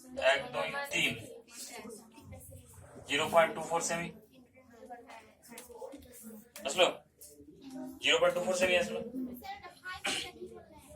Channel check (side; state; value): both; identical; correlation 1.00